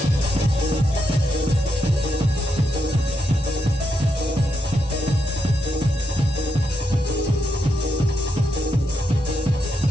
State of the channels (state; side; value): normal; both; correlation 0.82